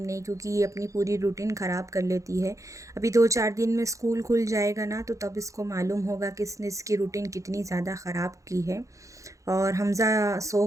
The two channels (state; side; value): late; left; 0.15 ms